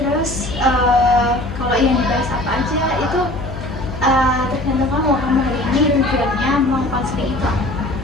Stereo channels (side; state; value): left; noise; hum, 10 dB below the sound